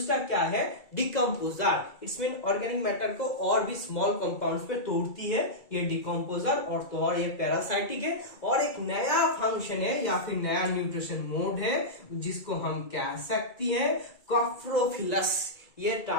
क्या है, decomposer. It's mean organic matter को और भी स्मॉल कंपाउंड्स पे तोड़ती है, ये डिकम्पोजर। और ये पैरासाइटिक है। और एक नया फंक्शन है या फिर नया न्यूट्रिशन मोड है, जिसको हम कह सकती है कॉप्रोफिलस। ये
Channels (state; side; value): late; right; 2.3 ms